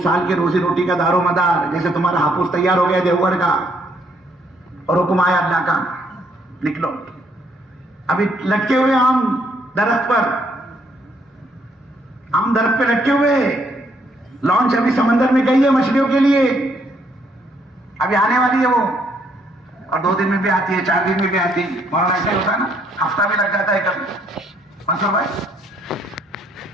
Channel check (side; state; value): both; normal; correlation 0.70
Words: سال کے روزی روٹی کا دار و مدار، جیسے تمہارا ہاپوس تیار ہو گیا دیوگڑھ کا، اور حکم آیا اللہ کا، نکلو۔ ابھی لٹکے ہوئے آم درخت پر، آم درخت پہ لٹکے ہوئے، لانچ ابھی سمندر میں گئی ہے مچھلیوں کے لیے، ابھی آنے والی ہے وہ، اور 2 دن میں بھی آتی ہے، 4 دن میں بھی آتی ہے، مولانا ایسا ہوتا ہے نا، ہفتہ بھی لگ جاتا ہے کبھی۔ منصور بھائی،